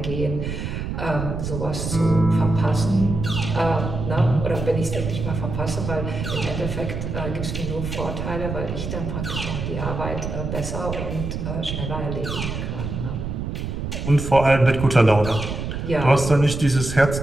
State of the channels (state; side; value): noise; right; rumble, 4 dB below the sound